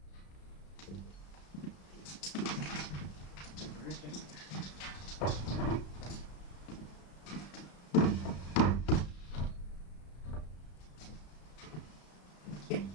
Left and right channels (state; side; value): late; right; 33 ms